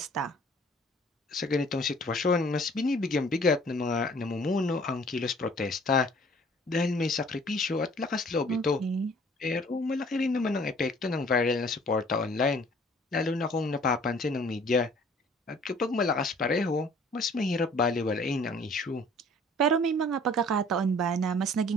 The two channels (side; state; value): both; normal; correlation 0.54